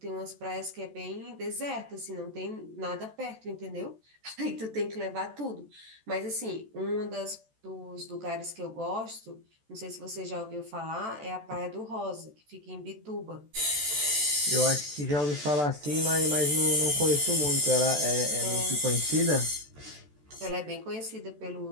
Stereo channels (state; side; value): late; left; 14 ms